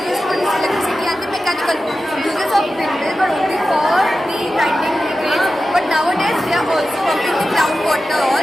used to produce electricity and the mechanical uses of windmill were only for the grinding grades, but nowadays they are also pumping the groundwater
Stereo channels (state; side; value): normal; both; correlation 0.93